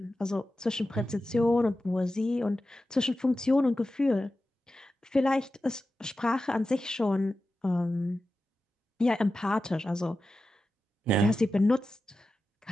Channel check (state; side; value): normal; both; correlation 0.93